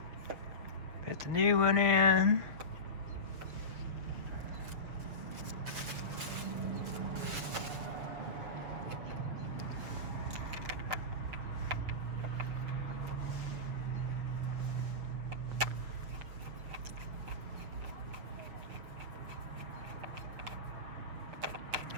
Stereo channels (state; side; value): late; left; 6.9 ms